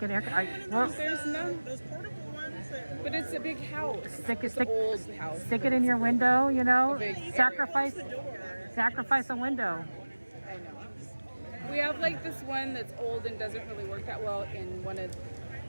an air. There's none. Those portable ones. But it's a big house. It's an old house. Stick it in your window. You know, sacrifice a window. I know. We have like this one that's old and doesn't really work that well in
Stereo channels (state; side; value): inverted; both; correlation -1.00